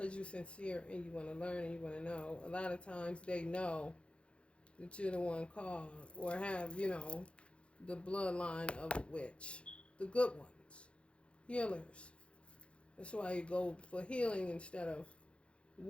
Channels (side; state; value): right; late; 0.059 ms